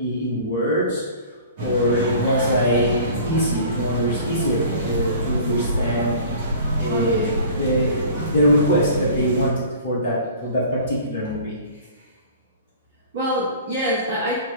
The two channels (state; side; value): inverted; both; correlation -0.45